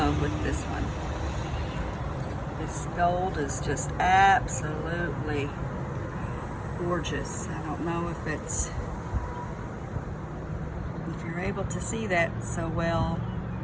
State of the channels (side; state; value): both; identical; correlation 1.00